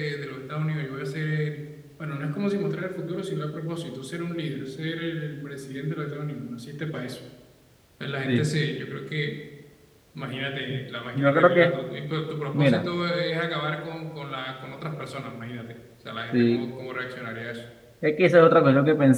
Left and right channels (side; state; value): both; identical; correlation 1.00